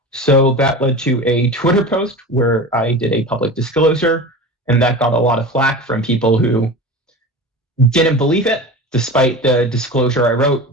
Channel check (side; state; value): both; normal; correlation 0.31